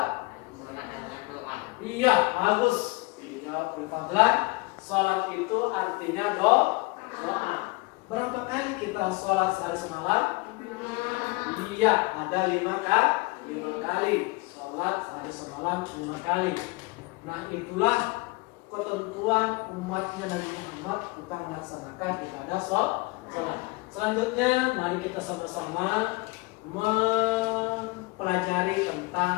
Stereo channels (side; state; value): right; quieter; 25.2 dB